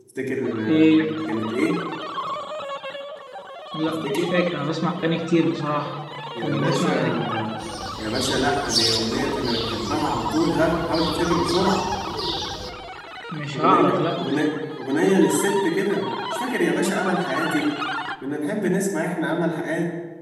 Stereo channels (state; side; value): identical; both; correlation 1.00